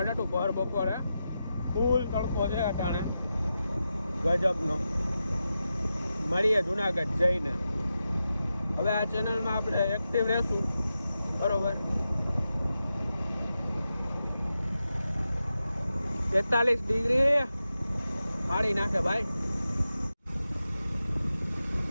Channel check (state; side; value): inverted; both; correlation -0.90